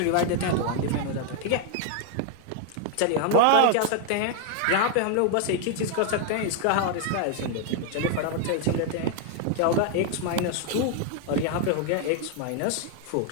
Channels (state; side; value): different; both; correlation 0.00